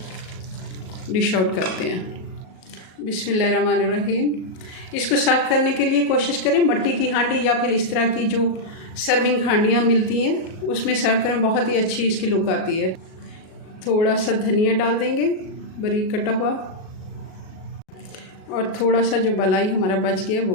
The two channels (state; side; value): late; right; 37 ms